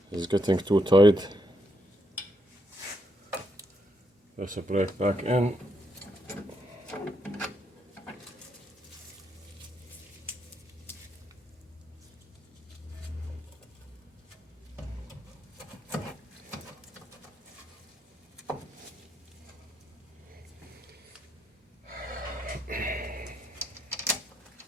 It's getting too tight. There's a brake back in.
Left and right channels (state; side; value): normal; both; correlation 0.77